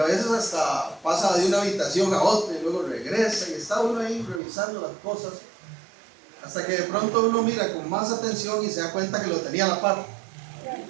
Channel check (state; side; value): drops out; left; at 4.4 s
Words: veces hasta pasa de una habitación a otra y luego regresa y está uno ahí revisando las cosas hasta que de pronto uno mira con más atención y se da cuenta que lo tenía a la par,